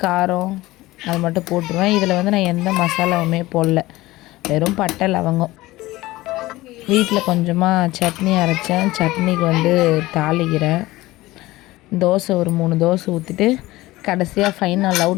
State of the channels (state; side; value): quieter; right; 18.5 dB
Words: காரம் அது மட்டும் போட்டுருவேன். இதில் வந்து நான் எந்த மசாலாவுமே போடல, வெறும் பட்டை, லவங்கம். வீட்டில் கொஞ்சமாக சட்னி அரைச்சேன், சட்னிக்கு வந்து தாளிக்கிறேன். தோசை ஒரு 3 தோசை ஊற்றிட்டு கடைசியாக ஃபைனல்